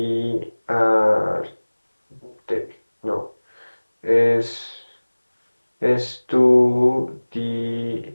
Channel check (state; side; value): inverted; both; correlation -1.00